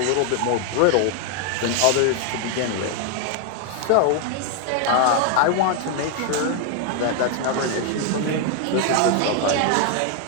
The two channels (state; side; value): different; both; correlation 0.01